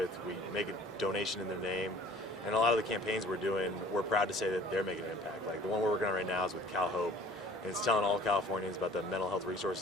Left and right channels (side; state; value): both; normal; correlation 0.51